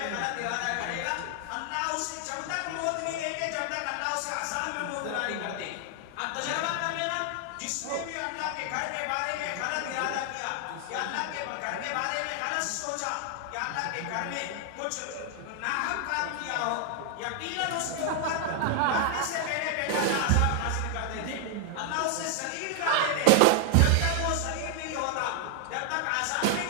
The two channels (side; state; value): both; different; correlation 0.00